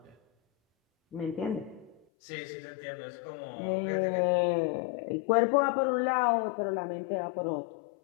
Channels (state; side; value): drops out; right; at 2.0 s